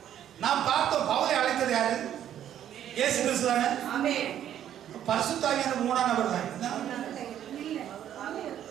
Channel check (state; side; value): quieter; left; 10.7 dB